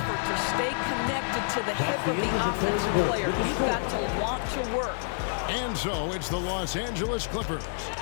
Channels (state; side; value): silent; right; digital silence